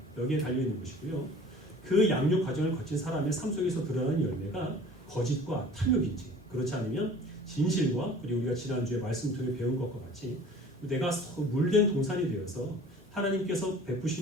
여기에 달려있는 것이고요. 그 양육 과정을 거친 사람의 삶 속에서 드러나는 열매가 거짓과 탐욕인지 그렇지 않으면 진실과 그리고 우리가 지난주에 말씀 통해 배운 것과 같이 내가 물된 동산이 되어서 하나님께서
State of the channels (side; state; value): both; normal; correlation 0.46